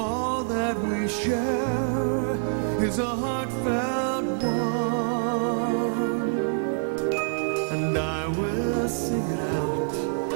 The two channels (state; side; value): silent; left; 58 dB below the other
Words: that we share is a heartfelt one, and I will sing it out